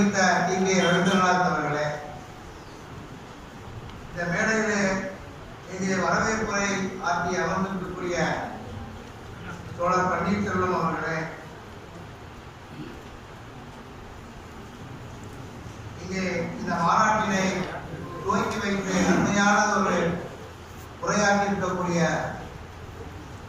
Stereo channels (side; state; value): both; identical; correlation 1.00